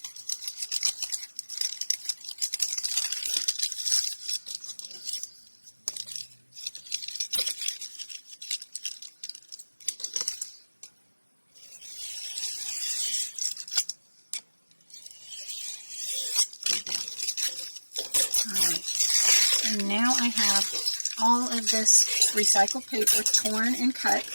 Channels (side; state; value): both; inverted; correlation -1.00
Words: And now I have all of this recycled paper torn and cut